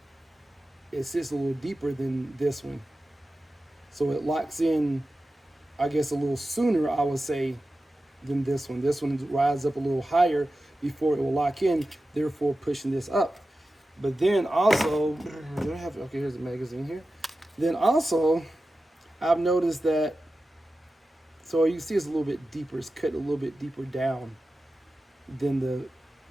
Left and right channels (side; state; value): both; normal; correlation 0.93